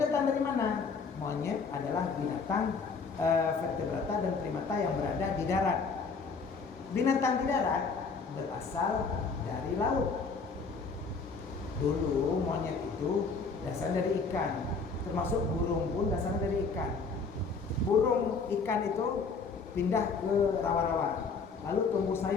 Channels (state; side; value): quieter; right; 4.7 dB